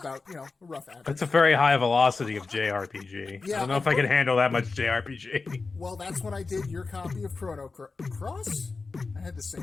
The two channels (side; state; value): right; quieter; 4.1 dB